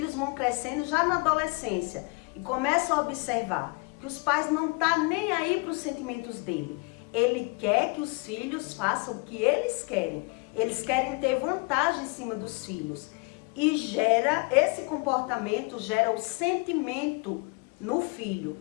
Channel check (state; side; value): quieter; right; 30.2 dB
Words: vão crescendo já na adolescência e começam a observar que os pais não estão nem aí para os sentimentos dele. Ele quer que os filhos façam o que eles querem. Eles querem ter vantagem em cima dos filhos. E esse comportamento gera o sentimento no